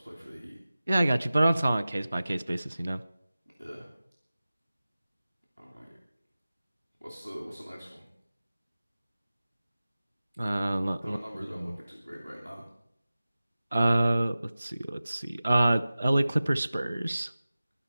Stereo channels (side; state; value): both; inverted; correlation -0.96